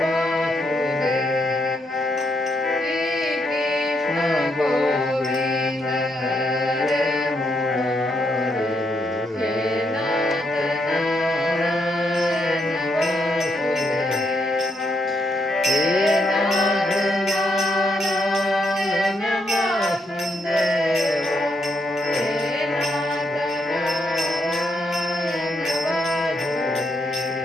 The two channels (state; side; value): normal; both; correlation 0.77